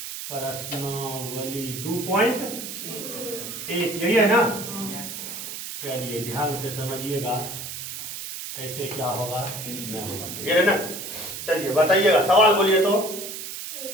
2.1 यही है ना। चलिए ध्यान से समझिएगा कैसे क्या होगा नहीं होगा, क्लियर है ना। चलिए बताइएगा, सवाल बोलिए तो।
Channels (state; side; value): noise; right; hiss, 8 dB below the sound